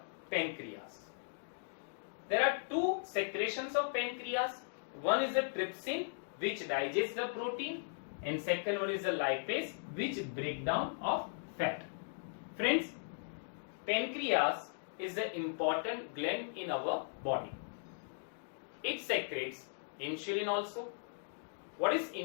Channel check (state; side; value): silent; right; digital silence